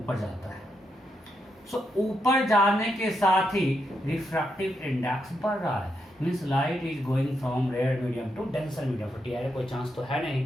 जाता है, सो ऊपर जाने के साथ ही रिफ्रैक्टिव इंडेक्स बढ़ रहा है, means light is going from rare medium to denser medium, तो टीआर कोई चांस तो है नहीं,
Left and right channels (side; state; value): both; normal; correlation 0.82